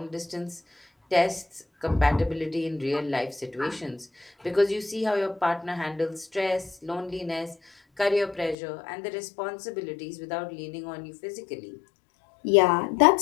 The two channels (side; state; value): right; drops out; at 8.6 s